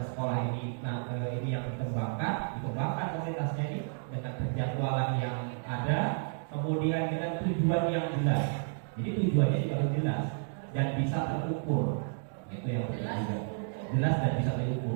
sekolah ini, ini yang dikembangkan komunitasnya ini dengan penjadwalan yang ada, kemudian dengan tujuan yang jelas. Jadi tujuannya juga harus jelas dan bisa terukur. Itu yang penting. Jelas dan bisa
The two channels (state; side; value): silent; left; digital silence